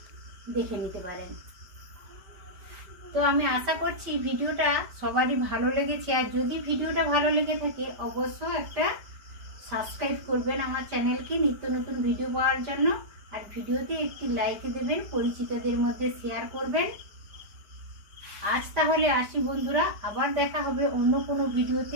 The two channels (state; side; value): late; left; 5.1 ms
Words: দেখে নিতে পারেন। তো আমি আশা করছি ভিডিওটা সবারই ভালো লেগেছে। আর যদি ভিডিওটা ভালো লেগে থাকে অবশ্যই একটা সাবস্ক্রাইব করবেন আমার চ্যানেলকে নিত্য নতুন ভিডিও পাওয়ার জন্য। আর ভিডিওতে একটি লাইক দেবেন, পরিচিতদের মধ্যে শেয়ার করবেন। আজ তাহলে আসি বন্ধুরা, আবার দেখা হবে অন্য কোনো